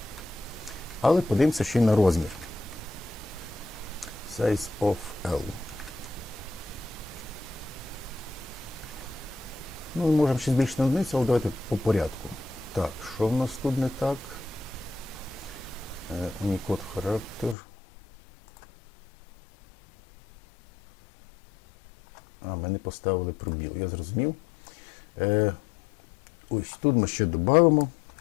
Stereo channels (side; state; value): right; drops out; at 17.6 s